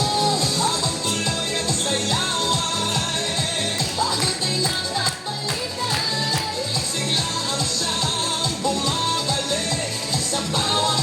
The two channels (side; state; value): both; identical; correlation 1.00